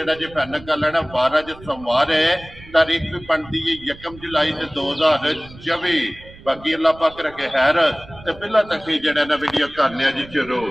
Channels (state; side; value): noise; right; rumble, 19 dB below the sound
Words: जी फाइनल कर लेना। 12 जो सोमवार है, तारीख भी बनती है 1 जुलाई 2024। बाकी अल्लाह पाक रखे खैर ते पहला तक ही जेड़ा ना वीडियो करने जी शुरू।